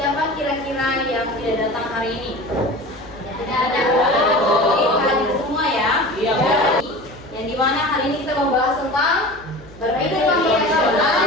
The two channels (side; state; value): left; noise; hum, 23 dB below the sound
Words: kira-kira yang tidak datang hari ini? Tidak ada. Hadir semua ya. Iya. Yang dimana hari ini kita membahas tentang berpikir komputasional